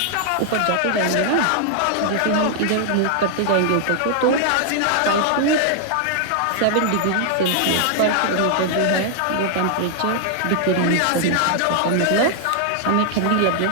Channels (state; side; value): different; both; correlation 0.00